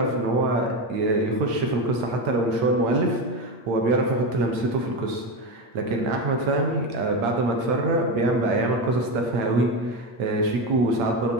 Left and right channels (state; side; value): late; left; 8.6 ms